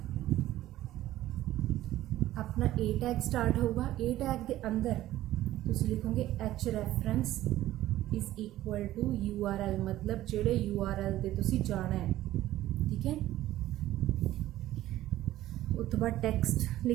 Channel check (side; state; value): left; quieter; 14.6 dB